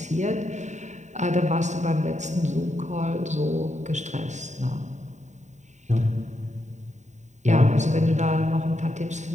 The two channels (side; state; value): left; late; 0.34 ms